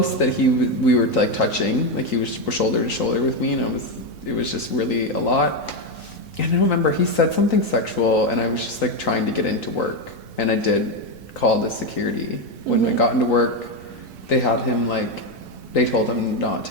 that we were like touching, like he was shoulder to shoulder with me, and it was just really a lot. And I don't remember, he said something sexual, and I was just like trying to get into work, and I did call the security. When I got into work, they had him like, they told him not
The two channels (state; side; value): normal; both; correlation 0.09